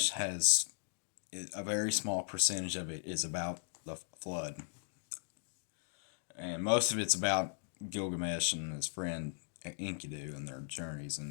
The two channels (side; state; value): right; silent; digital silence